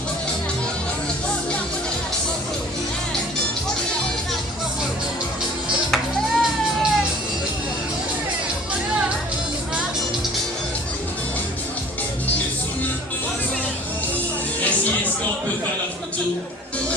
Merci, est-ce qu'on peut faire la photo?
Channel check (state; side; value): normal; both; correlation 0.48